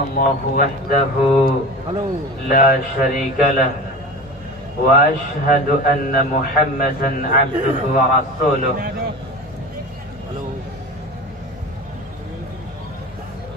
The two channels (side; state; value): both; normal; correlation 0.32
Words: الله وحده لا شريك له وأشهد أن محمدا عبده ورسوله